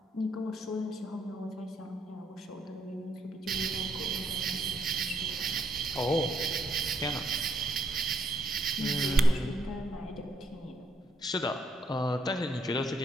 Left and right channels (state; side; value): normal; both; correlation 0.71